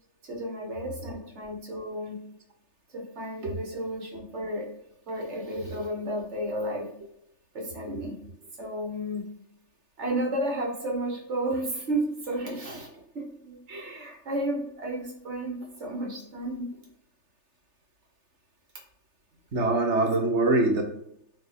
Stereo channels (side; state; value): left; late; 3.3 ms